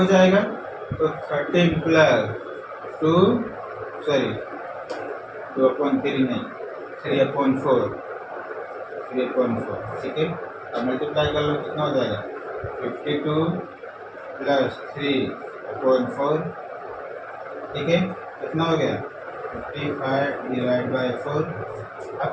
जाएगा। तो 13 प्लस 2/3 नहीं 3/4, ठीक है। अब मल्टीप्लाई कर लो, कितना हो जाएगा 52 प्लस 3/4, ठीक है। कितना हो गया 55 डिवाइड बाई 4।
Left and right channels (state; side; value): identical; both; correlation 1.00